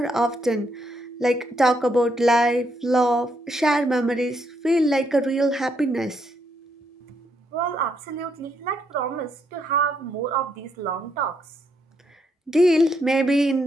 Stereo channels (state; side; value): normal; both; correlation 0.76